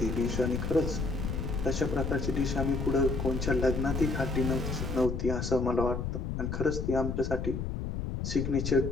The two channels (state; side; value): noise; left; rumble, 3 dB below the sound